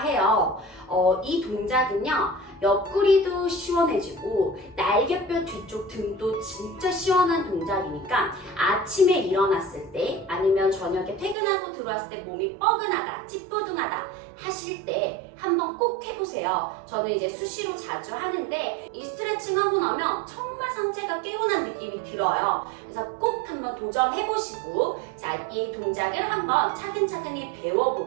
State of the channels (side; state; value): left; drops out; at 11.4 s